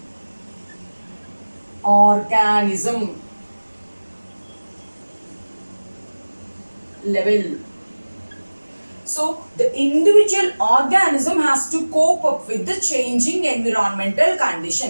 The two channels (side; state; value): both; inverted; correlation -1.00